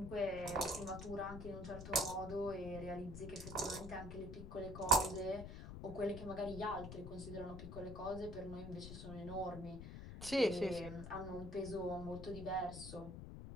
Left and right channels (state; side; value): noise; left; rumble, 9 dB below the sound